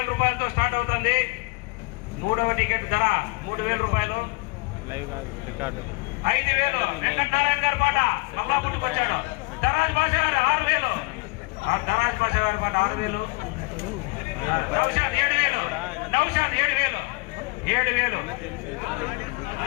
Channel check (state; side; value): quieter; right; 26.5 dB